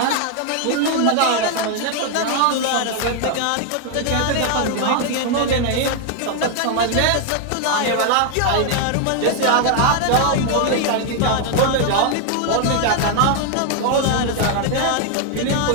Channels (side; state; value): both; different; correlation 0.00